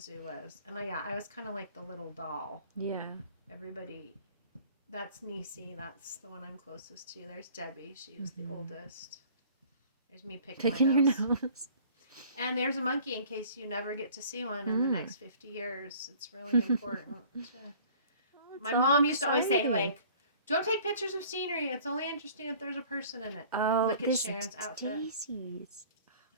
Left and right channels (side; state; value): both; inverted; correlation -0.51